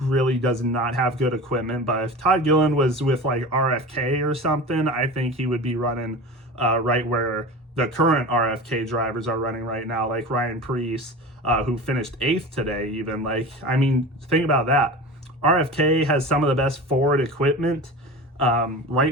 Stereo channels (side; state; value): both; normal; correlation 0.32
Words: does not have good equipment. But if Todd Gilliland was with like RFK or something, I think he would be running right where the current RFK drivers are running right now, like Ryan Preece, who finished 8th today even. Think about that. RFK has some of the best forward equipment